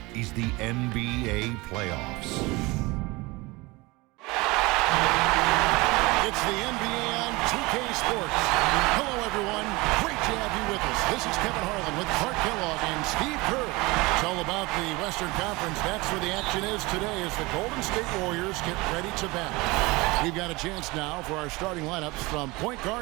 is the NBA playoffs. It's the NBA on 2K Sports. Hello, everyone. Great to have you with us. This is Kevin Harlan with Clark Kellogg and Steve Kerr. It's all about the Western Conference. That's where the action is today as the Golden State Warriors get ready to battle. We've got a chance now for our starting lineups from point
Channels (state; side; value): quieter; left; 23.3 dB